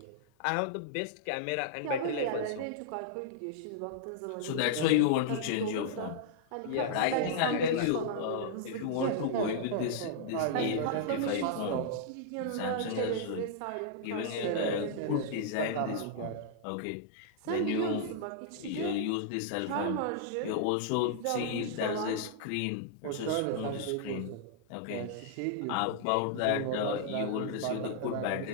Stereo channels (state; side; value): different; both; correlation -0.01